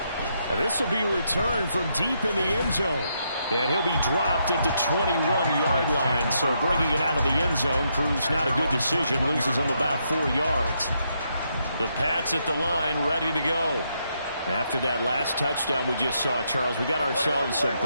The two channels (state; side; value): inverted; both; correlation -0.78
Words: This will be returned from deep in the end zone. And he'll be dropped at the 21-yard line. So bringing it out of the end zone proves not a good decision. Loses him about 4 yards. The Pats at the line, ready to go. After that last touchdown we just saw, Charles, we got ourselves a